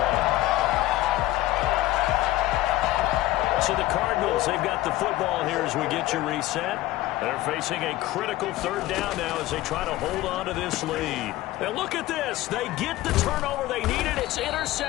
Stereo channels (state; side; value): quieter; right; 16.4 dB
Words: 1. So the Cardinals, they've got the football here as we get you reset. They're facing a critical 3rd down now as they try to hold on to this lead. Now look at this. They get the turnover they needed. It's